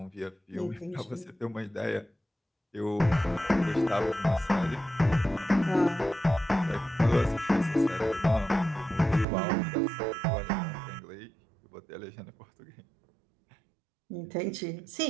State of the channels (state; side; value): drops out; left; at 9.2 s